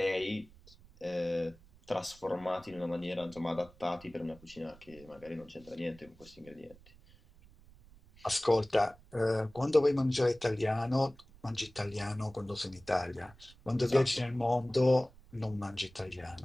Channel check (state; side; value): noise; right; rumble, 24 dB below the sound